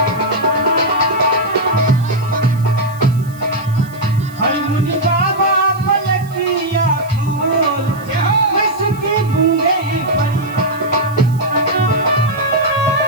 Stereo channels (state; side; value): noise; right; hiss, 23 dB below the sound